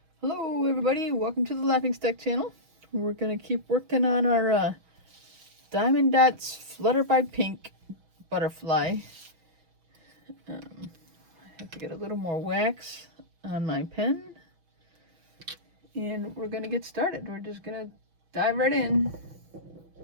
Hello everybody, welcome to the Laughing Stack channel. We're going to keep working on our Diamond Dotz Flutter by Pink butterfly. I have to get a little more wax on my pen. And we're going to get started. We're just going to dive right in.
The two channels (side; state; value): left; late; 6.2 ms